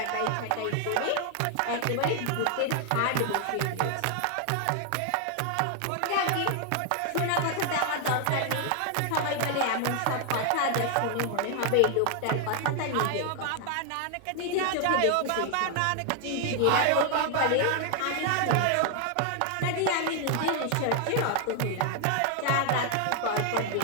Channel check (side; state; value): both; different; correlation 0.00